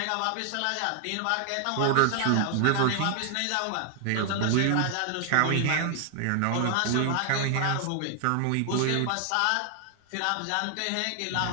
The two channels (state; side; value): different; both; correlation 0.00